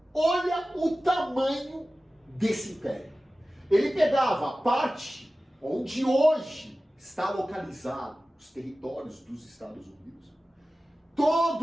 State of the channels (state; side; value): normal; both; correlation 0.96